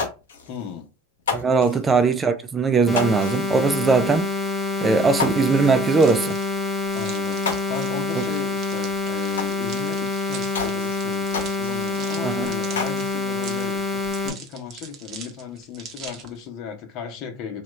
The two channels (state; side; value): normal; both; correlation 0.51